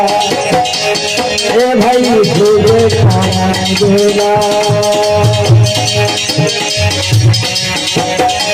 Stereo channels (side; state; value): both; identical; correlation 1.00